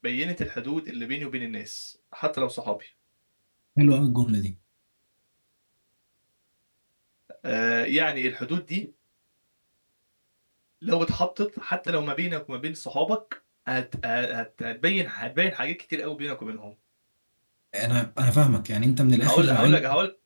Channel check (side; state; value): both; inverted; correlation -1.00